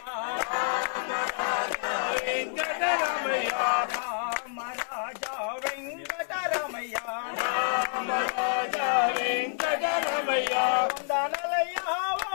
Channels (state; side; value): silent; right; 59 dB below the other